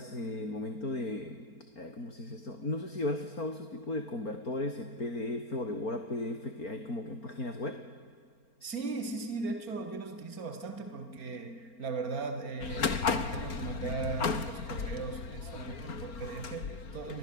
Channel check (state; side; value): late; right; 4.4 ms